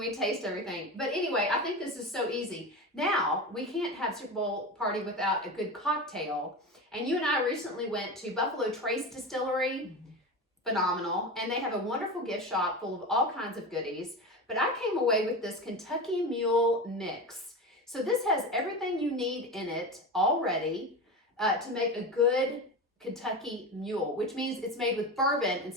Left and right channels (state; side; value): normal; both; correlation 0.25